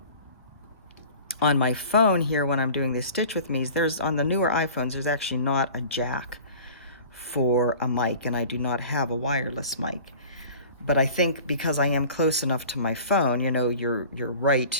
On my phone here, when I'm doing this Stitch With Me's, on the newer iPhones, there's actually not a jack for a mic, and I do not have a wireless mic. But I think because I am close enough to my phone, you're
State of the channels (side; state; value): both; inverted; correlation -0.43